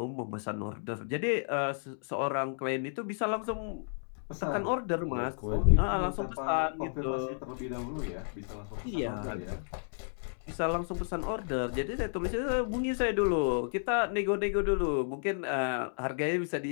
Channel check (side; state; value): right; silent; digital silence